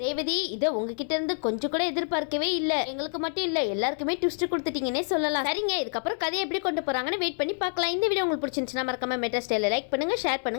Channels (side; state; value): right; silent; 60 dB below the other